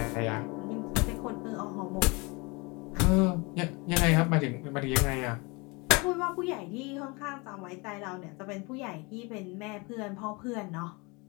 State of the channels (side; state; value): right; quieter; 27.6 dB